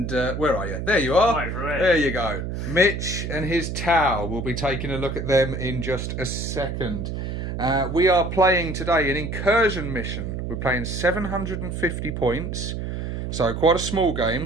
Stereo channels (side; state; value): right; noise; hum, 4 dB below the sound